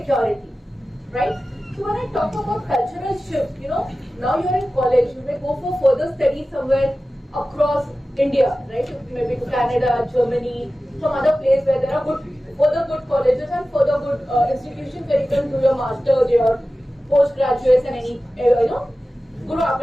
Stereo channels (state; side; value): normal; both; correlation 0.95